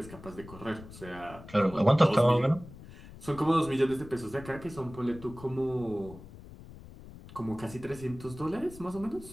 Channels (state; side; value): noise; left; rumble, 17 dB below the sound